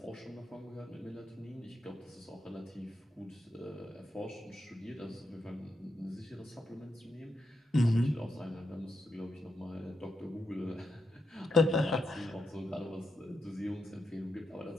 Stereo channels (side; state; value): both; normal; correlation 0.84